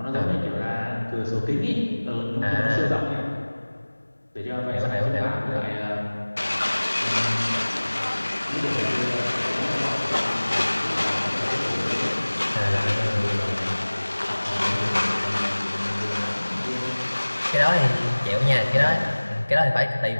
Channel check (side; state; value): both; inverted; correlation -1.00